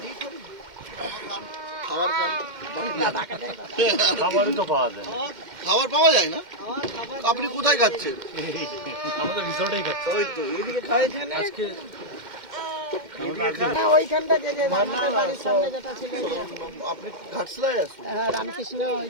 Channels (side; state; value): left; late; 2.1 ms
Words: খাবার খান। খাবারই তো পাওয়া যায়। খাবার পাওয়া যায় না? আপনি কোথায় খাচ্ছেন? আমাদের রিসর্টেই খাচ্ছে ওই তো এইদিকে খাই এখানে। আজকে। আপনি ঘাটশিলায় আছেন?